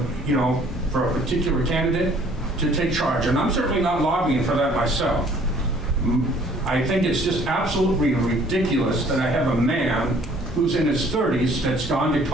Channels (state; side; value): normal; both; correlation 0.57